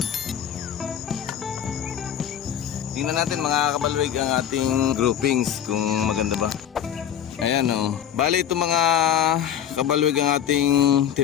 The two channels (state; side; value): quieter; right; 9.6 dB